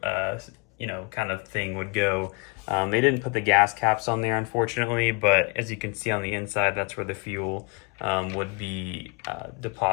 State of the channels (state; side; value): quieter; right; 30.3 dB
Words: of thing would go. They didn't put the gas caps on there, unfortunately, but as you can see on the inside, that's where the fuel would be